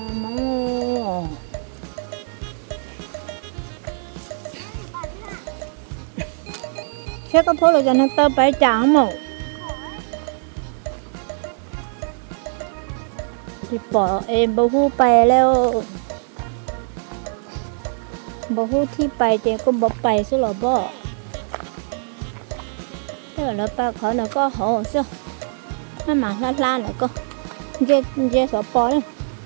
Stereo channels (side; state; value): left; silent; 60 dB below the other